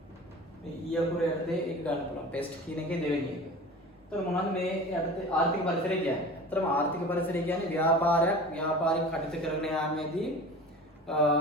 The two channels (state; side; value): normal; both; correlation 0.37